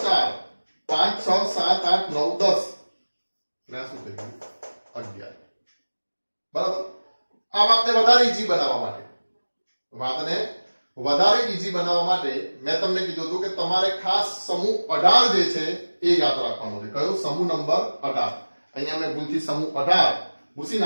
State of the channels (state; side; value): inverted; both; correlation -1.00